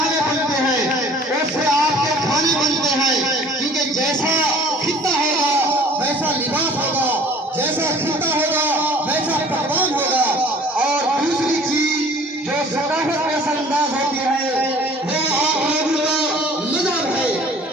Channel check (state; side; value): normal; both; correlation 0.51